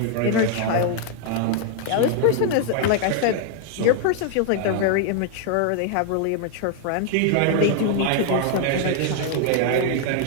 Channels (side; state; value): both; different; correlation 0.00